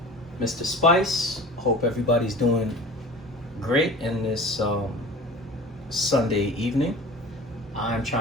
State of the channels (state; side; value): normal; both; correlation 0.39